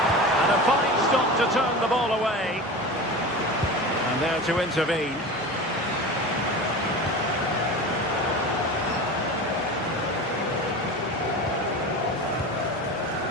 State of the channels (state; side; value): normal; both; correlation 0.30